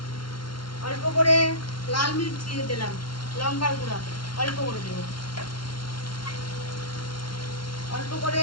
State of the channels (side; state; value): right; late; 0.73 ms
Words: অল্প করে লাল মির্চি দিলাম, লঙ্কার গুঁড়া অল্প করে দেবো, অল্প করে